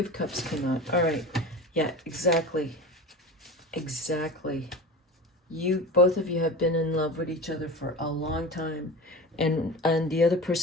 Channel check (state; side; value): normal; both; correlation 0.32